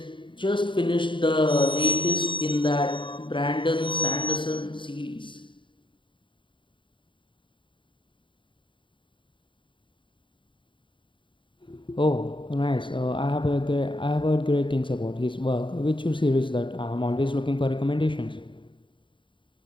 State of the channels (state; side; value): late; right; 0.24 ms